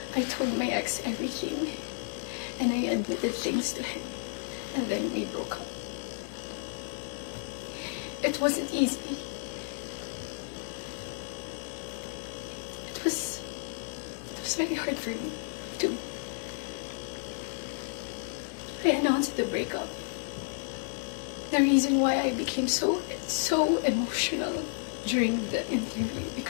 I told my ex everything. And I admitted things to him. And then we broke up. It wasn't easy. It was very hard for me, too. I announced the breakup. The reason why I became so emotional during the interview,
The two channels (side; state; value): right; silent; digital silence